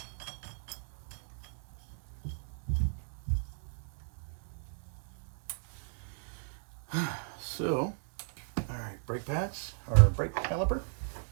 So, all right, brake pads, or brake caliper.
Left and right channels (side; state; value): left; silent; digital silence